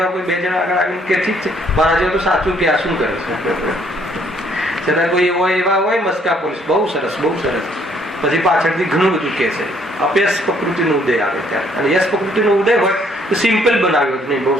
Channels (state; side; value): normal; both; correlation 0.65